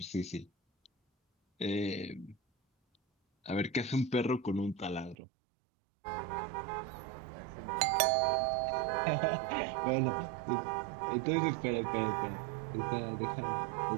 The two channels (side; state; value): left; drops out; at 5.2 s